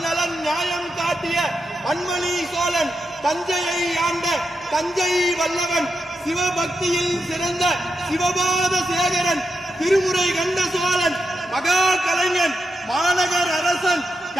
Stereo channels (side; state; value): both; normal; correlation 0.86